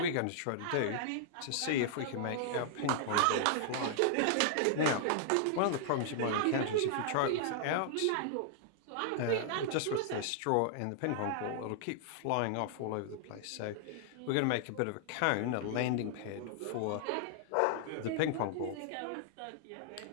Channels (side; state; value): both; different; correlation -0.01